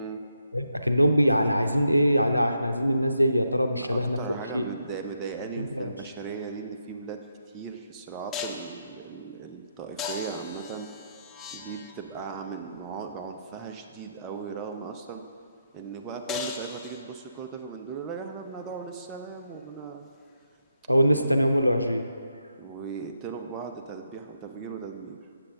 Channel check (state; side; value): inverted; both; correlation -0.80